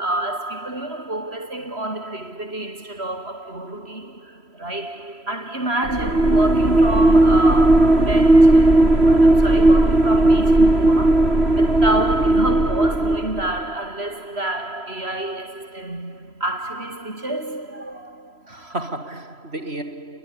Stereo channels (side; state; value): left; late; 3.0 ms